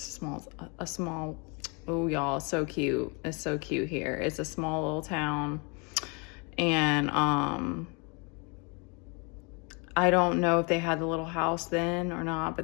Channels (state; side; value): quieter; right; 32.2 dB